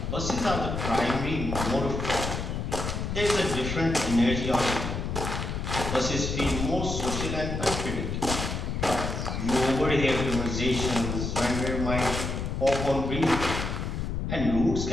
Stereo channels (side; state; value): left; noise; rumble, 3 dB below the sound